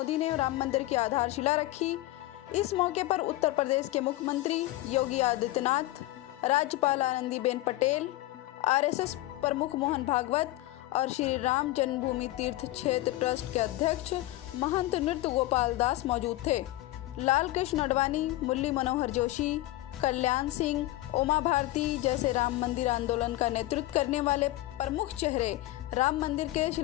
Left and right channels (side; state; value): right; quieter; 17.0 dB